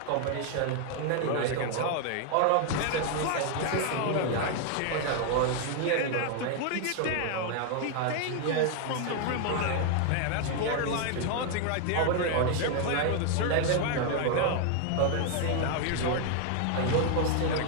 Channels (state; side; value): different; both; correlation 0.00